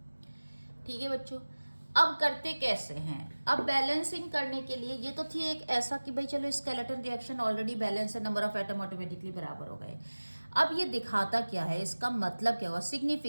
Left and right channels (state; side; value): inverted; both; correlation -1.00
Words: ठीक है बच्चों, अब करते कैसे हैं, अब बैलेंसिंग करने के लिए ये तो थी एक ऐसा कि भाई चलो स्केलेटन रिएक्शन ऑलरेडी बैलेंस है, नंबर ऑफ एटम ऑटोमेटिकली बराबर हो गए। अब ये दिखाता क्या है, इसका मतलब क्या हुआ,